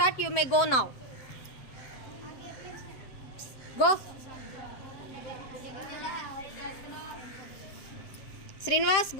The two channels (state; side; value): late; right; 7.7 ms